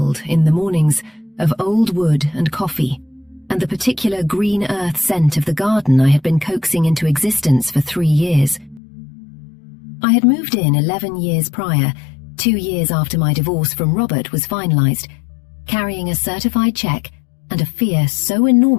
in the mornings, of old wood and coffee, and the particular green earth scent of the garden I had been coaxing into existence for 3 years. I had moved in 11 years prior, 2 years after my divorce from Robert was finalized, carrying a certified check and a fear so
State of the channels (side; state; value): right; drops out; at 8.8 s